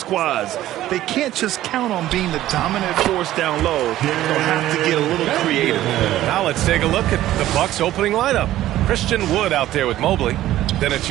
They can't just count on being the dominant force down low. They'll have to get a little creative. Now let's take a look at the Bucks opening lineup. Christian Wood out there with Mobley. Then it's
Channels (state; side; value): quieter; left; 14.1 dB